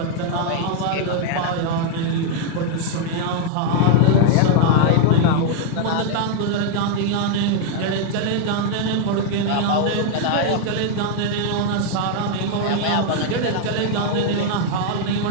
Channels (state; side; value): different; both; correlation 0.00